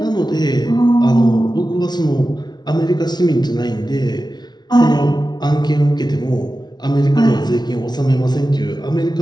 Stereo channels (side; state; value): right; late; 0.20 ms